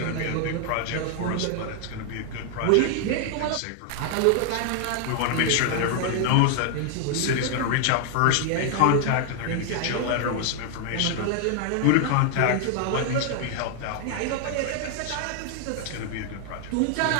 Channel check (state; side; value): different; both; correlation 0.00